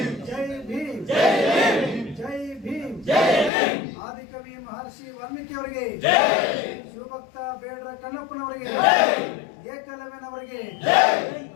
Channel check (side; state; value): right; drops out; at 3.5 s